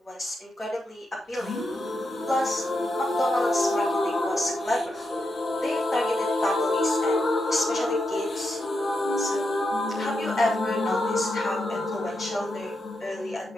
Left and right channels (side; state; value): both; normal; correlation 0.84